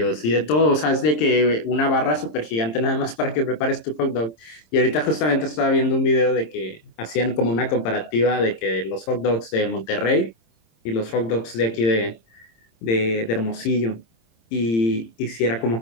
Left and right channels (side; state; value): right; late; 26 ms